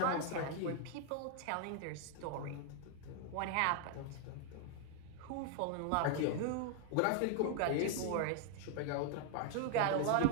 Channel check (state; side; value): different; both; correlation 0.00